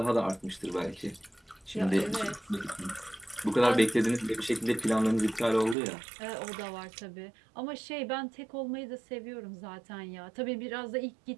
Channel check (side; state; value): left; drops out; at 5.8 s